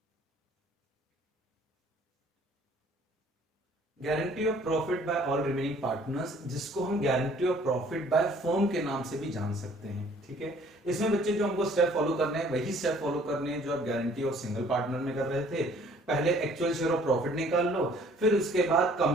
Guarantee of profit by all remaining partners, जिसको हम guarantee of profit by firm के नाम से भी जान सकते हैं, ठीक है। इसमें बच्चे जो हमको स्टेप फॉलो करने हैं वही स्टेप फॉलो करने हैं जो आप गारंटी ऑफ सिंगल पार्टनर में कर रहे थे। पहले एक्चुअल शेयर ऑफ प्रॉफिट निकाल लो, फिर उसके बाद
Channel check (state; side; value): normal; both; correlation 0.57